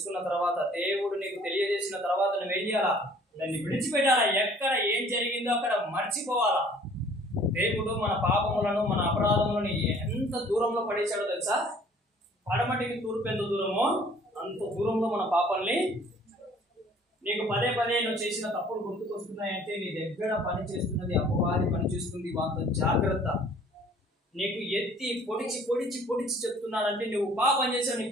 తర్వాత, దేవుడు నీకు తెలియజేసిన తర్వాత నువ్వేం చేయాలా? దాన్ని విడిచిపెట్టాలా. ఎక్కడ ఏం జరిగిందో అక్కడ మర్చిపోవాలా. దేవుడు మన పాపములను, మన అపరాధములను ఎంత దూరంలో పడేశాడో తెలుసా? పడమటికి తూర్పు ఎంత దూరమో అంత దూరంలో మన పాపాలని. నీకు పదే పదే నువ్వు చేసిన తప్పులు గుర్తుకొస్తున్నాయంటే నీ దగ్గర పని చేస్తున్నది అపవాది పని చేస్తుంది. అంత జాగ్రత్త. నీకు ఎత్తి పొడిచి పొడిచి పొడిచి చెప్తున్నాడంటే నువ్వు పాపం చేసావు, నీ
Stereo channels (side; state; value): both; normal; correlation 0.55